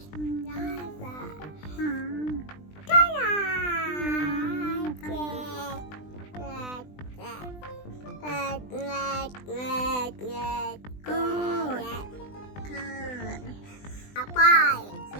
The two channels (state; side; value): late; right; 20 ms